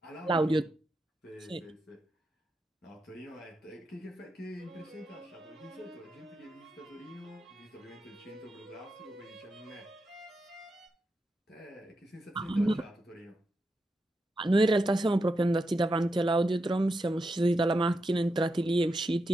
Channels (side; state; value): both; normal; correlation 0.86